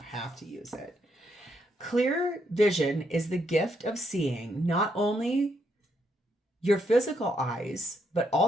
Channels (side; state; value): both; normal; correlation 0.77